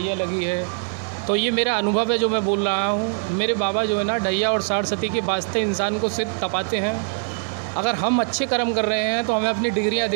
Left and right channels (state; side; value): silent; left; digital silence